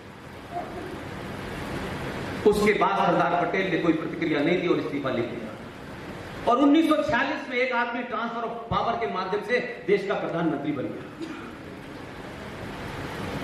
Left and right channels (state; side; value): identical; both; correlation 1.00